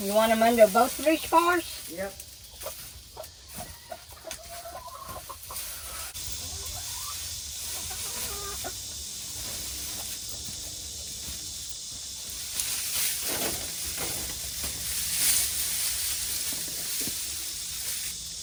You want them under both reach bars? Yep.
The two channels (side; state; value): both; identical; correlation 1.00